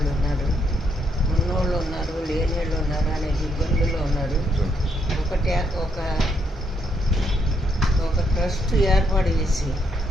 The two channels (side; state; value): both; normal; correlation 0.75